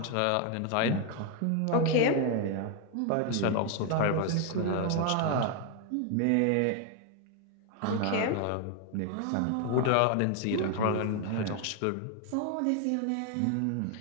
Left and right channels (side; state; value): both; different; correlation 0.01